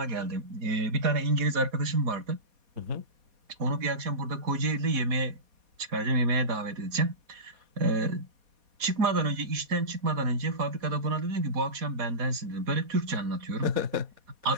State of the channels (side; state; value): left; late; 4.2 ms